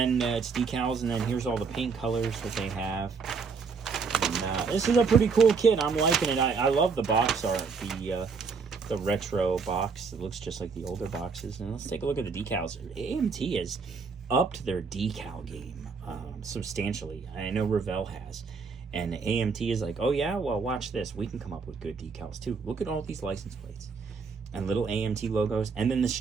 it's decals, and then here's all the paint colors that they have. And, this is a pretty cool kit. I'm liking it. I love the box art, the retro box. It looks just like the older boxes. And let's take a look at the decals. AMT has upped their decal game substantially. I know Revell has. And AMT is like, oh yeah, well, watch this. We can come up with good decals too. Look at all these license plates and little AMT logos. And then the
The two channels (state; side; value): quieter; left; 5.1 dB